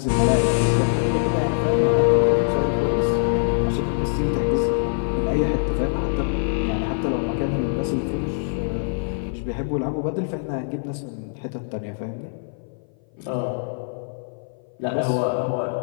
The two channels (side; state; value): right; silent; 58 dB below the other